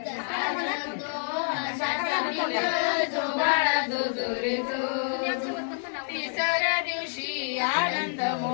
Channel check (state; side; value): silent; right; digital silence